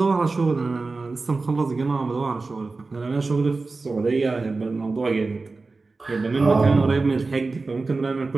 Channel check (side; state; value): left; quieter; 3.8 dB